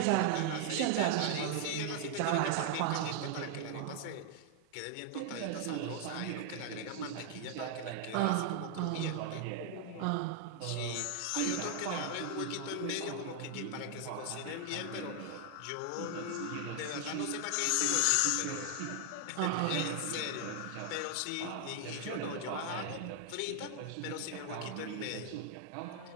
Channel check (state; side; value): different; both; correlation 0.00